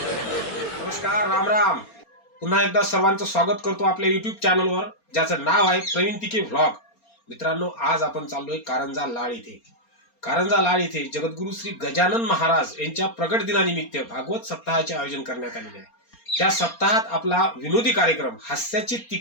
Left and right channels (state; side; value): late; right; 4.3 ms